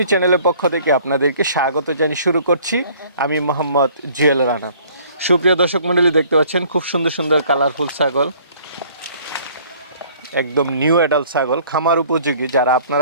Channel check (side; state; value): both; inverted; correlation -0.55